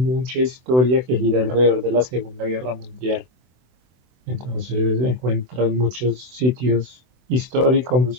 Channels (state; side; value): late; left; 24 ms